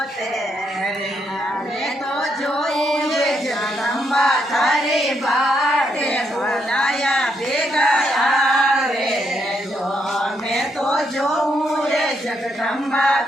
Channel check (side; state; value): both; normal; correlation 0.77